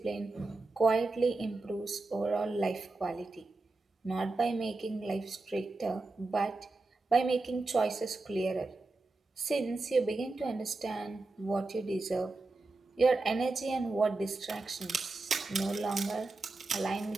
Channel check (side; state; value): left; quieter; 3.3 dB